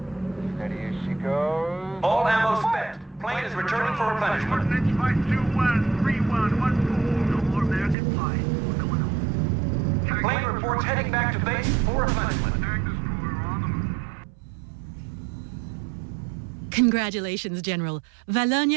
Steady as she goes. All ammo spent. Plane is returning for replenishment. Coordinates 521-3114. No more American pie. We're going home. Plane reports heading back to base for replenishment. Attack destroyer on the move. Congratulations, General.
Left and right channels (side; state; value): left; drops out; at 8.0 s